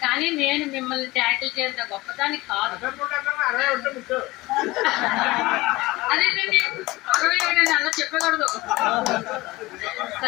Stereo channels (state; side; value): quieter; right; 20.5 dB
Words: కానీ నేను మిమ్మల్ని ట్యాకిల్ చేసిన గొప్పదాన్ని కాదు. అదేంటండి 67 అలా చెప్పకూడదు.